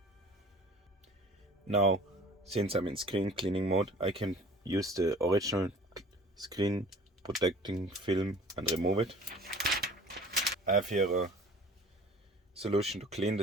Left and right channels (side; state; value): both; normal; correlation 0.46